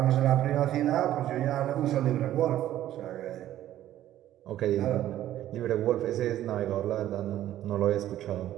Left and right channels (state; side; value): quieter; left; 12.9 dB